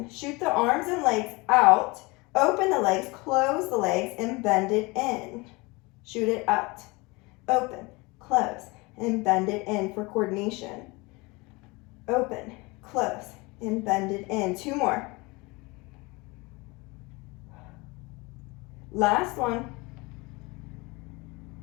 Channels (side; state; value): right; quieter; 25.1 dB